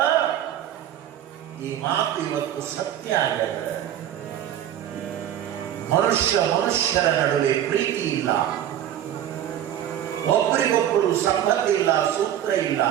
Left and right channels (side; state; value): left; quieter; 11.1 dB